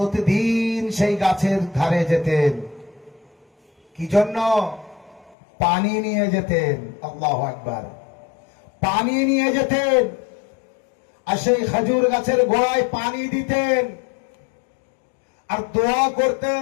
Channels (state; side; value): drops out; right; at 5.4 s